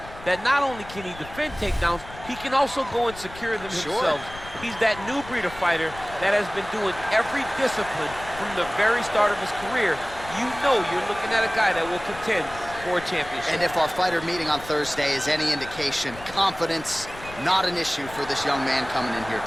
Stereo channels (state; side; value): noise; left; rumble, 16 dB below the sound